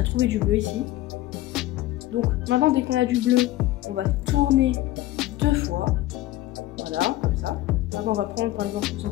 trouvé du bleu ici. Donc maintenant, dès qu'on a du bleu, on va tourner 2 fois. Voilà, comme ça. Maintenant, on va prendre par exemple le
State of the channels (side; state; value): right; quieter; 15.9 dB